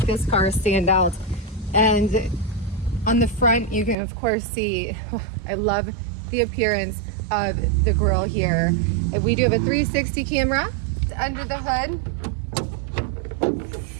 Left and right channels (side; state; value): left; drops out; at 4.0 s